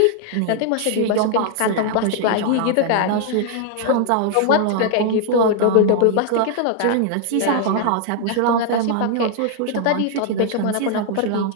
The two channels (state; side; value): different; both; correlation 0.00